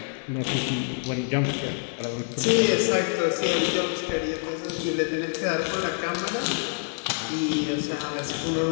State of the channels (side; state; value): right; silent; digital silence